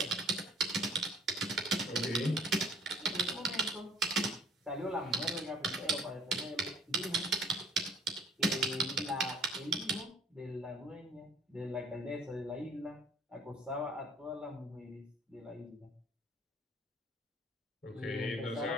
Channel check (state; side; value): normal; both; correlation 0.54